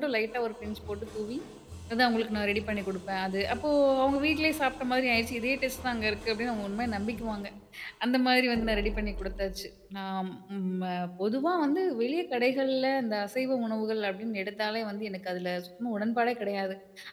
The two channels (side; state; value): both; identical; correlation 1.00